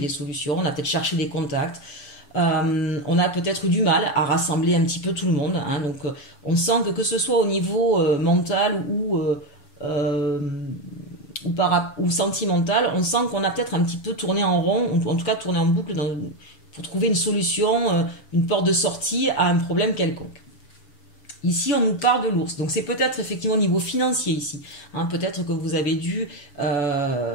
solutions, on a peut-être cherché des contacts. On a peut-être eu du mal à rassembler un petit peu tout le monde. Hein, donc on sent que ce soit au niveau mental ou sentimental, on sent qu'on a peut-être un petit peu tourné en rond, ou en tout cas tourné en boucle pour trouver une solution, une porte de sortie à un problème quelconque. Ici, on nous parle de l'ours. Donc, c'est peut-être effectivement au niveau financier ici. Hein, peut-être que vous avez dû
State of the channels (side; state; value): right; late; 7.0 ms